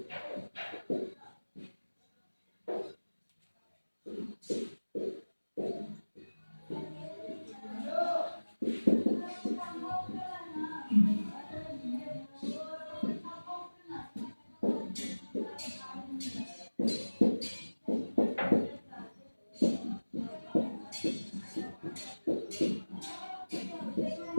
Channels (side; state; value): both; inverted; correlation -1.00